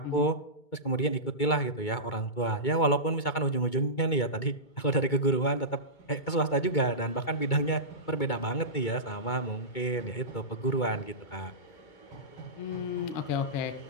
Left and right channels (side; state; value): right; late; 2.2 ms